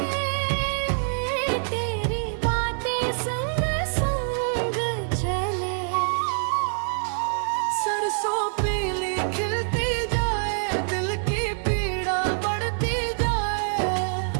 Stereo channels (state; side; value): silent; left; 61 dB below the other